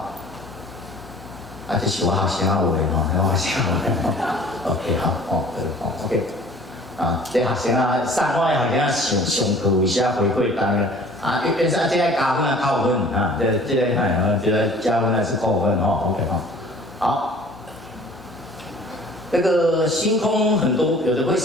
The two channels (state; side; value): normal; both; correlation 0.50